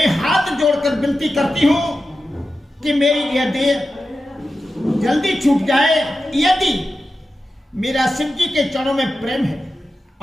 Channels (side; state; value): both; normal; correlation 0.92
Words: हाथ जोड़कर विनती करती हूं कि मेरी यह देह जल्दी छूट जाए। यदि मेरा शिव जी के चरणों में प्रेम है